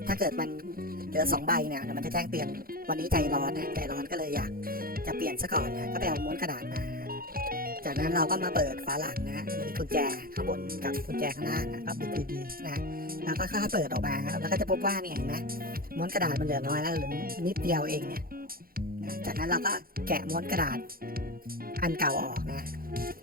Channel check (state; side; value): late; left; 0.42 ms